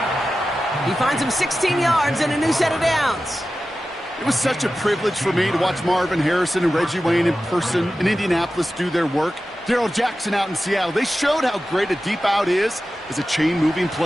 He finds him 16 yards and a new set of downs. It was such a privilege for me to watch Marvin Harrison and Reggie Wayne in person in Indianapolis do their work. Darrell Jackson out in Seattle. They showed how great a deep out is as a chain-moving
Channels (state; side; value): normal; both; correlation 0.94